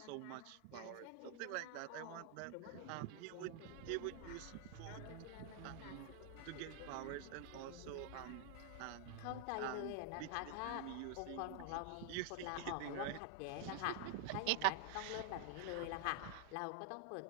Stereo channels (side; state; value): both; different; correlation 0.00